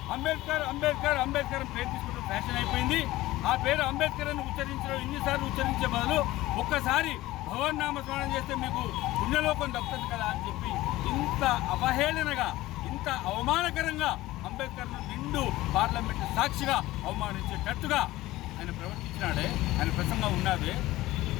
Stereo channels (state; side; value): quieter; right; 17.3 dB